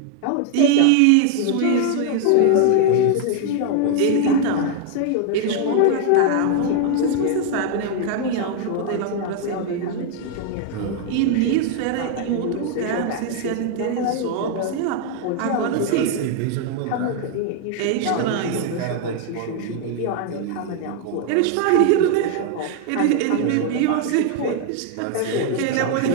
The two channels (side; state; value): both; different; correlation 0.00